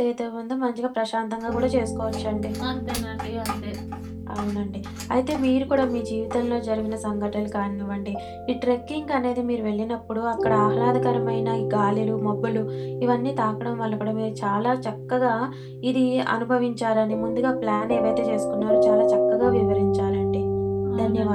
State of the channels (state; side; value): identical; both; correlation 1.00